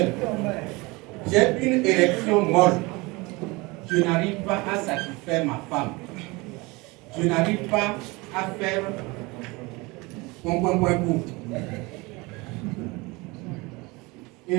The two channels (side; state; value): left; quieter; 24.4 dB